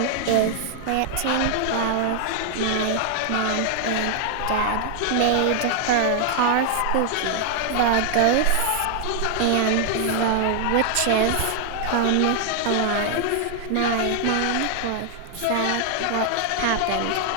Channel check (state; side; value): different; both; correlation 0.00